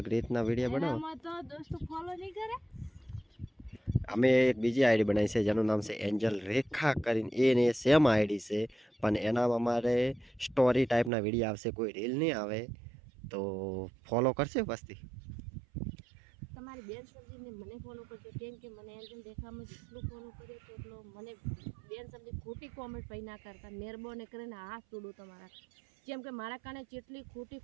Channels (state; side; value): drops out; left; at 11.1 s